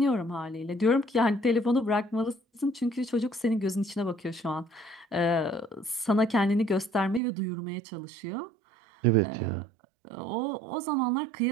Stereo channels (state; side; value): drops out; left; at 7.2 s